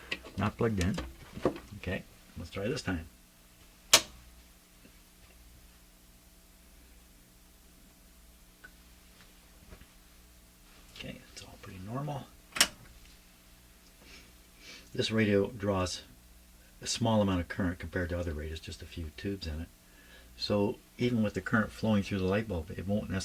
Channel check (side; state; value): both; identical; correlation 1.00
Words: Not plugged in. Okay, let's try this time. Okay, it's all pretty normal. This radio draws a small amount of current compared to other radios, just a few tubes in it. So even with the current flowing through the light bulb, it won't